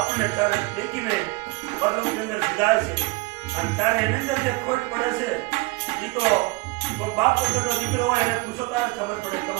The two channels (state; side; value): quieter; left; 24.1 dB